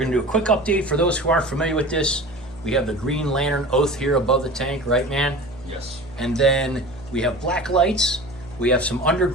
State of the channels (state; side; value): noise; right; hum, 18 dB below the sound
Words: to do a quick update for those who aren't familiar with this. We have the Green Lantern oath here above the tank, right, man? Yes. And then we have black lights. We have some under